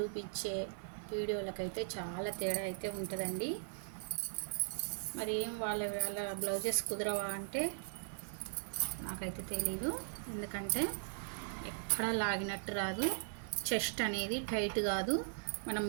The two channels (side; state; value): left; silent; 52 dB below the other